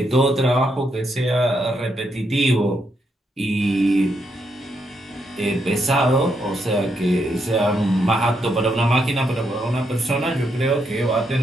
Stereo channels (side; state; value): both; normal; correlation 0.79